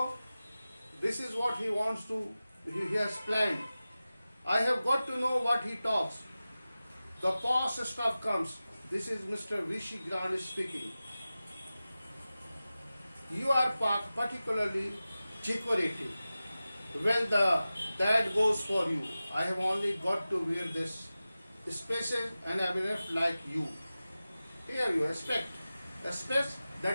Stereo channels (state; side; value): inverted; both; correlation -0.95